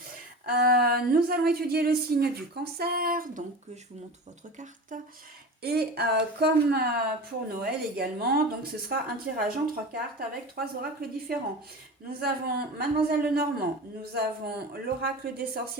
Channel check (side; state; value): both; normal; correlation 0.31